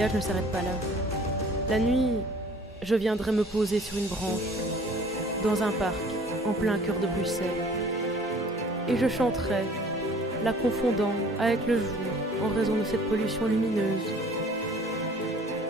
ne s'arrête pas là. La nuit, je viendrai me poser sur une branche, dans un parc, en plein cœur de Bruxelles. Et je chanterai, la confondant avec le jour en raison de cette pollution lumineuse.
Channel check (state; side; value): normal; both; correlation 0.52